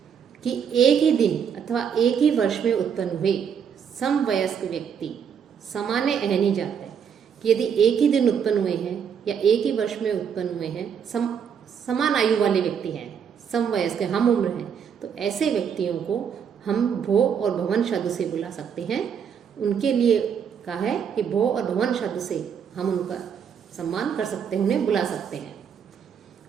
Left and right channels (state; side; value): quieter; left; 7.5 dB